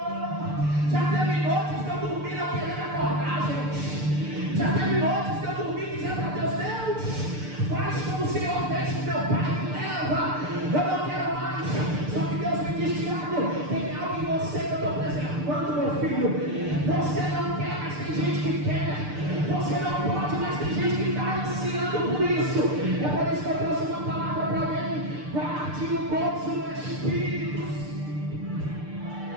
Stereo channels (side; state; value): left; late; 6.7 ms